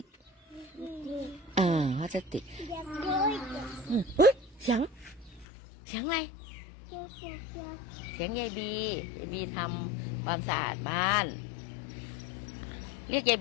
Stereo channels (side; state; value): right; drops out; at 5.5 s